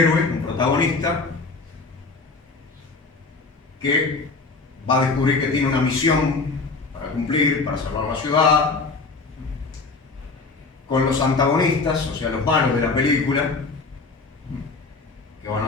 un protagonista, que va a descubrir que tiene una misión para cumplir, para salvar la ciudad, con los antagonistas, o sea, los malos de la película, que van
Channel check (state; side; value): quieter; right; 4.0 dB